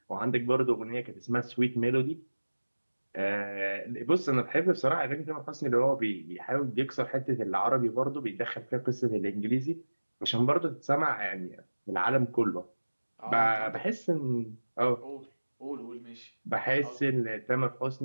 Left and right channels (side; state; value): both; inverted; correlation -1.00